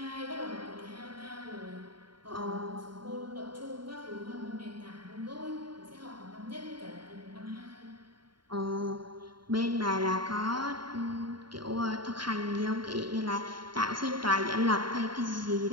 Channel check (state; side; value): late; left; 0.72 ms